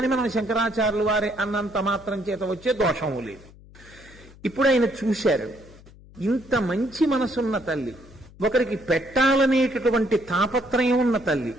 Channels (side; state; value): left; noise; hum, 22 dB below the sound